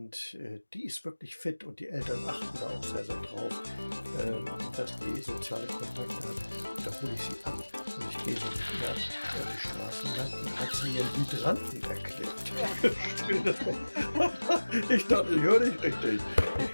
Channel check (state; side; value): inverted; both; correlation -1.00